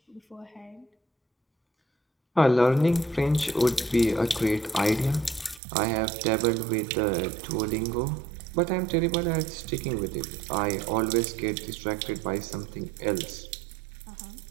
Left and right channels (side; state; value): left; drops out; at 5.6 s